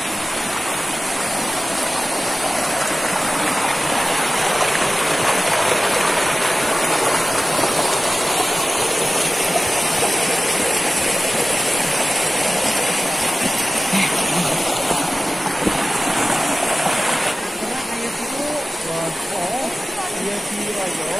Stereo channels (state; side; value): normal; both; correlation 0.96